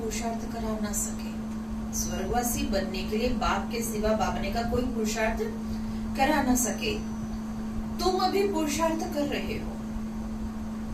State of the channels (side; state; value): both; identical; correlation 1.00